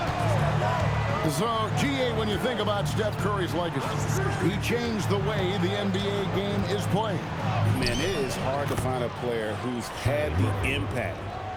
So, GA, when you think about Steph Curry's legacy, he changed the way the NBA game is played. Man, it is hard to find a player who's had the impact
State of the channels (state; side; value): identical; both; correlation 1.00